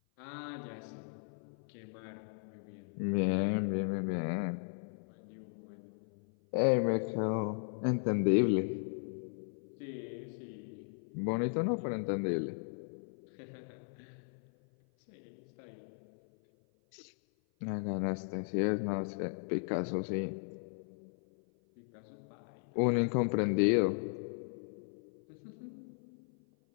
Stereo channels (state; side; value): silent; right; 53 dB below the other